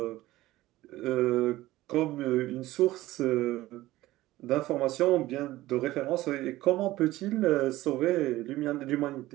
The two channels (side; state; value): left; quieter; 16.9 dB